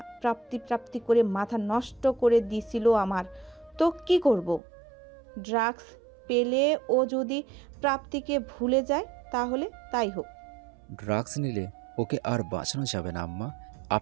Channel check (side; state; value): left; drops out; at 4.6 s